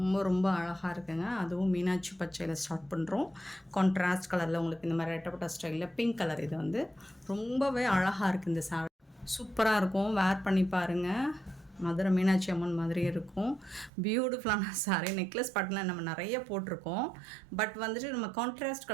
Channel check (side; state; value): left; drops out; at 13.9 s